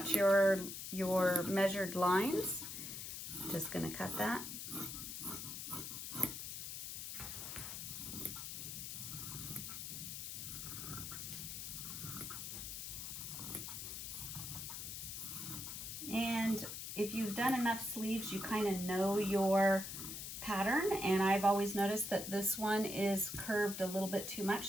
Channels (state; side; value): noise; left; hiss, 7 dB below the sound